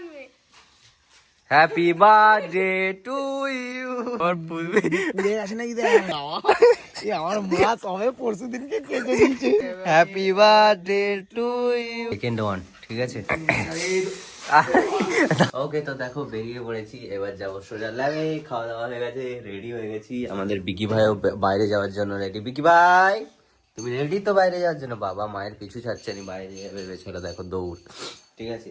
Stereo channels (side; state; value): both; identical; correlation 1.00